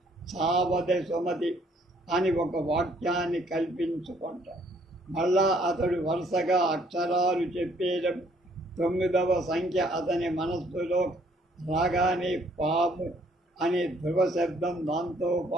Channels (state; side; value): normal; both; correlation 0.64